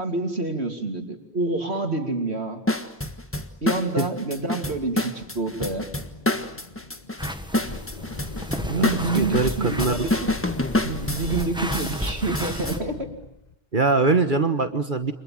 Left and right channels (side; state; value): both; normal; correlation 0.06